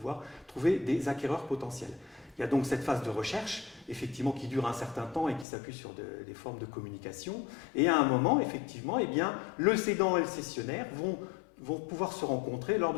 trouver des acquéreurs potentiels. Il y a donc cette phase de recherche, effectivement, qui dure un certain temps et qui s'appuie sur des formes de communication. Et à un moment, effectivement, eh bien, le cédant et le cessionnaire vont pouvoir se rencontrer lors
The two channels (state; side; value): drops out; right; at 5.5 s